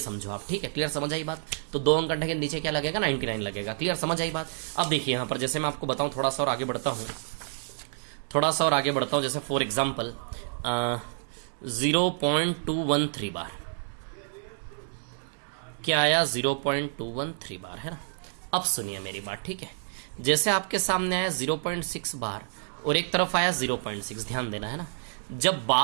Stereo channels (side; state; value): left; silent; digital silence